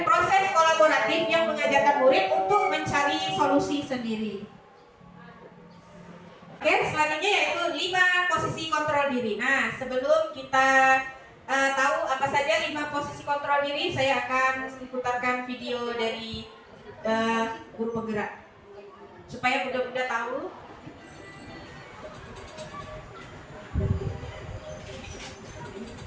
proses kolaboratif yang mengajarkan murid untuk mencari solusi sendiri. Oke, selanjutnya yaitu 5 posisi kontrol diri. Nah, sebelum kita tahu apa saja 5 posisi kontrol diri, saya akan putarkan video dari guru penggerak supaya bunda-bunda tahu.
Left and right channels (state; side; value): identical; both; correlation 1.00